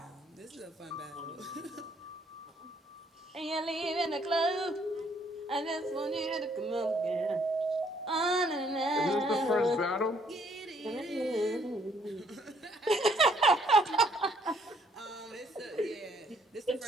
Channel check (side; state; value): both; normal; correlation 0.66